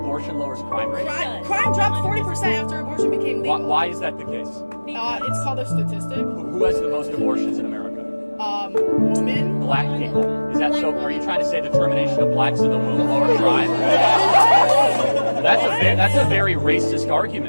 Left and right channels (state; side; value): inverted; both; correlation -1.00